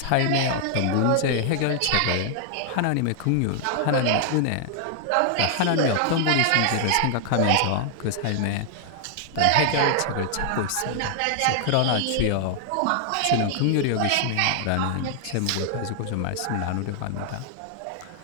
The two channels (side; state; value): both; different; correlation 0.00